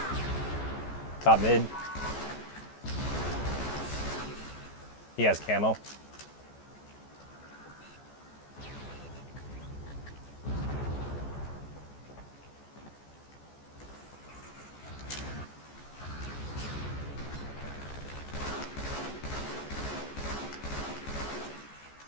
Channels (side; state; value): right; late; 14 ms